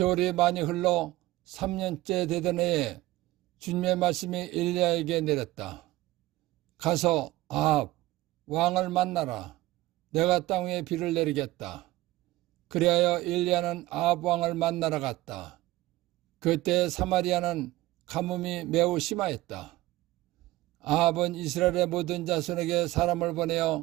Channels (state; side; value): quieter; left; 17.9 dB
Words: 많이 흘러 3년째 되던 해에 주님의 말씀이 엘리야에게 내렸다. 가서 아합 왕을 만나라. 내가 땅 위에 비를 내리겠다. 그리하여 엘리야는 아합 왕을 만나러 갔다. 그때 사마리아는 가뭄이 매우 심하였다. 아합은 이스라엘의 모든 자손에게 사람을